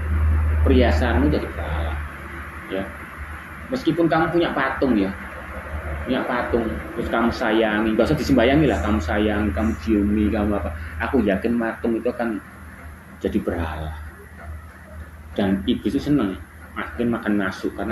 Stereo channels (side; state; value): both; identical; correlation 1.00